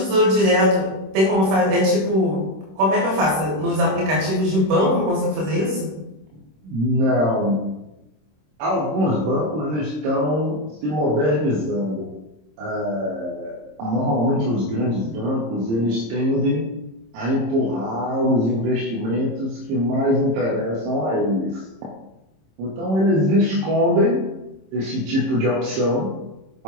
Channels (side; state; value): left; late; 26 ms